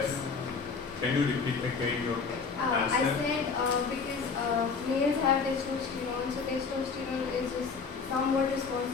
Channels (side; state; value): right; quieter; 5.1 dB